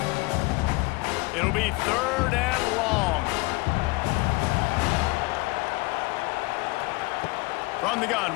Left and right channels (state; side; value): quieter; right; 23.8 dB